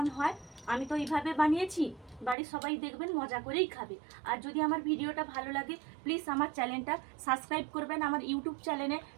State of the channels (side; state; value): left; drops out; at 2.4 s